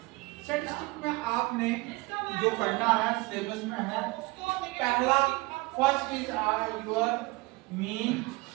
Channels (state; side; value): quieter; left; 23.5 dB